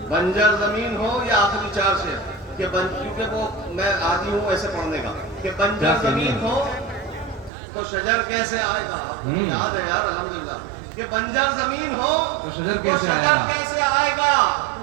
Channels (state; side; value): drops out; left; at 7.5 s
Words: بنجر زمین ہو یا آخری چار شعر کہ کیونکہ وہ میں عادی ہوں ایسے پڑھنے کا کہ بنجر زمین ہو تو شجر کیسے آئے گا. یاد ہے یار الحمدللہ کہ بنجر زمین ہو تو شجر کیسے آئے گا.